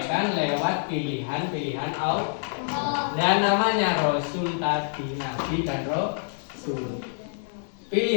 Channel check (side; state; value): right; silent; 61 dB below the other